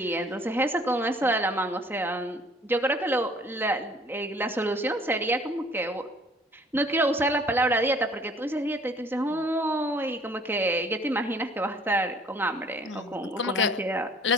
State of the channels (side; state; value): both; normal; correlation 0.55